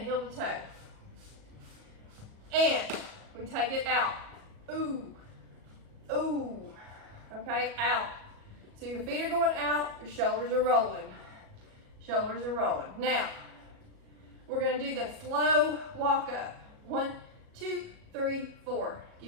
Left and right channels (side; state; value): left; late; 37 ms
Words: to toe. And we take it out. Ooh, ooh, okay, out. So your feet are going out, your shoulders are rolling. Shoulders are rolling. Now, we're gonna do the slow walk up. 1, 2, 3, 4.